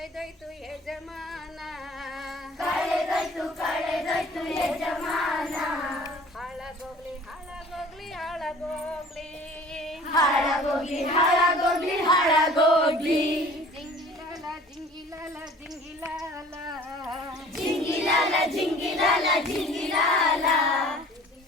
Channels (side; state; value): both; normal; correlation 0.48